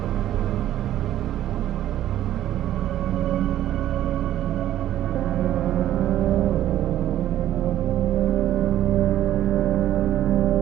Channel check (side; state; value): left; quieter; 12.5 dB